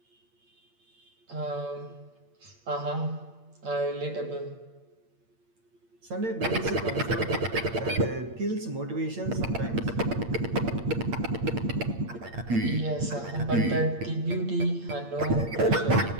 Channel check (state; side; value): late; left; 8.7 ms